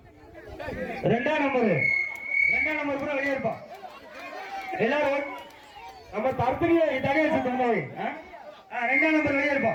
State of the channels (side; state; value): both; identical; correlation 1.00